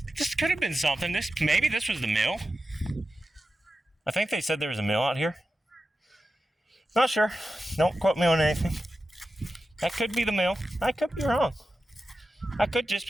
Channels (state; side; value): normal; both; correlation 0.92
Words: could have been something. Maybe this was the mill. I think they said there was a mill out here. Not sure. Don't quote me on anything. That could be the mill. I could be wrong. That could just